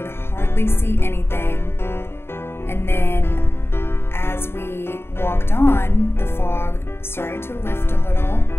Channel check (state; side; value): late; right; 0.11 ms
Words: hardly see anything. And then as we walked on, the fog started to lift a little.